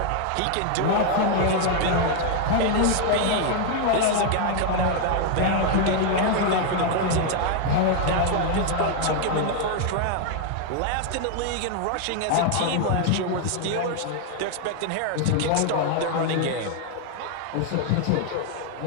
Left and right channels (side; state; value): both; different; correlation 0.00